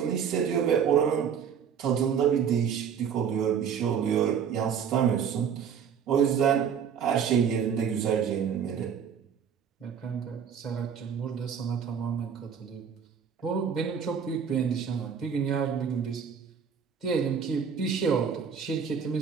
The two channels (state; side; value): quieter; left; 7.4 dB